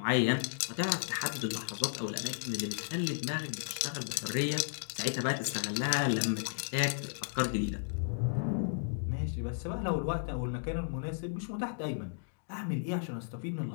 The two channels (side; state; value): right; silent; digital silence